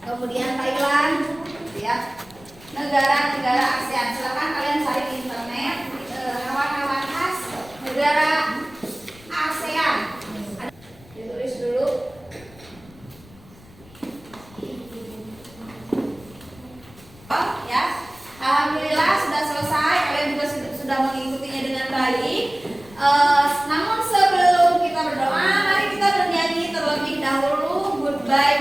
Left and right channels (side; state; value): left; noise; rumble, 23 dB below the sound